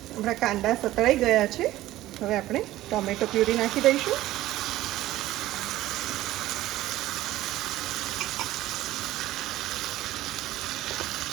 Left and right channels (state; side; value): quieter; left; 15.5 dB